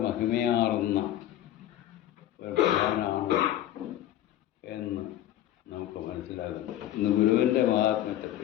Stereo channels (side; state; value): right; quieter; 12.9 dB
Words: മഹിമയാർന്ന ഒരു ഭഗവാനാണ് എന്ന് നമുക്ക് മനസ്സിലാകുന്നു. ഇന്ന് ഗുരുവിൻ്റെ